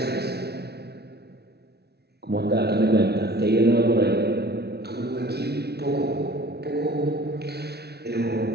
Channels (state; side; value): late; left; 0.48 ms